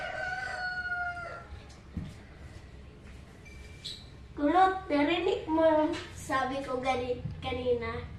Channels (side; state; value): both; identical; correlation 1.00